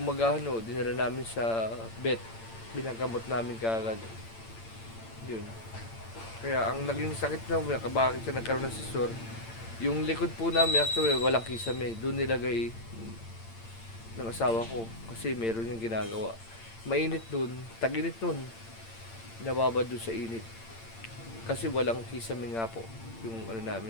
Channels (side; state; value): right; late; 8.8 ms